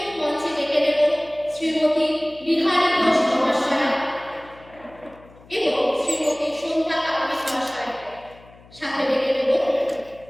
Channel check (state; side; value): noise; left; hum, 24 dB below the sound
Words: মঞ্চে ডেকে দেব শ্রীমতী বিহারী ঘোষ মহাশয়া এবং শ্রীমতী সন্ধ্যা কাপুর মহাশয়, সাথে ডেকে দেব